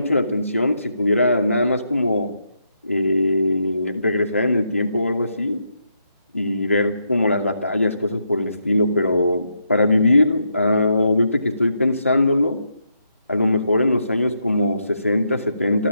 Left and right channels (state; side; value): inverted; both; correlation -0.80